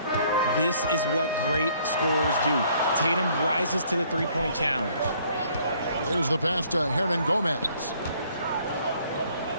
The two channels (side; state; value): both; inverted; correlation -0.62